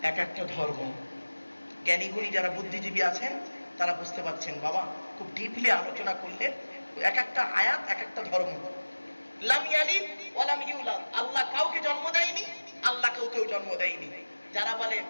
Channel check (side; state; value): both; inverted; correlation -1.00